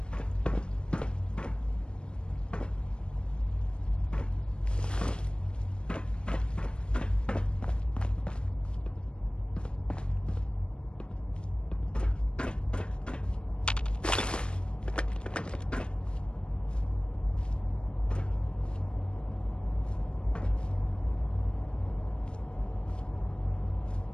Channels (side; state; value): right; late; 0.054 ms